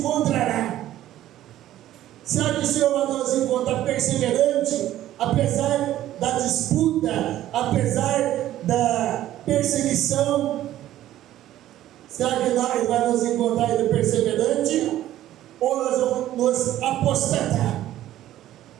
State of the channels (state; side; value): quieter; left; 13.3 dB